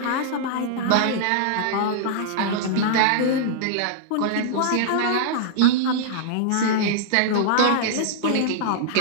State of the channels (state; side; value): different; both; correlation -0.01